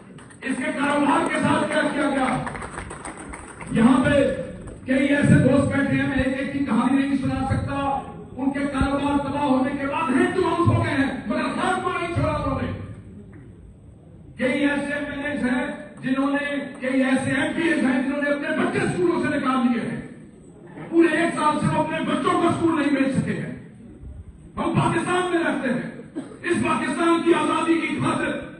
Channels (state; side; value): identical; both; correlation 1.00